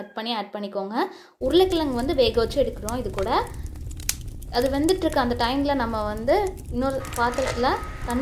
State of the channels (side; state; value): both; identical; correlation 1.00